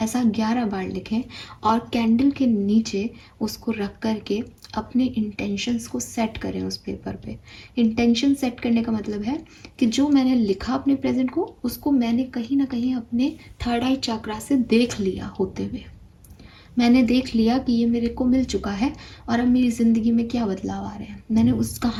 ऐसा 11 बार लिखें और कैंडल के नीचे उसको रख करके अपने इंटेंशंस को सेट करें उस पेपर पे। इंटेंशन सेट करने का मतलब है कि जो मैंने लिखा अपने प्रेजेंट को, उसको मैंने कहीं ना कहीं अपने थर्ड आई चक्रा से देख लिया होते हुए। मैंने देख लिया कि ये मेरे को मिल चुका है और अब मेरी ज़िंदगी में क्या बदलाव आ रहे हैं। मैंने उस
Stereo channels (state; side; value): identical; both; correlation 1.00